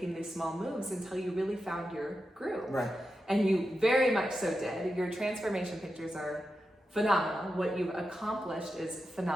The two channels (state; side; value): normal; both; correlation 0.89